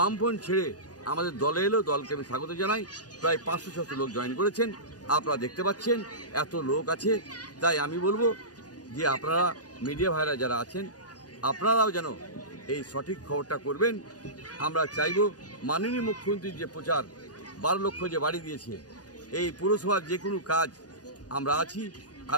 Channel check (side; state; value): right; late; 0.68 ms